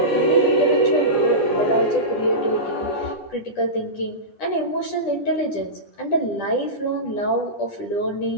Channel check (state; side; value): late; right; 10 ms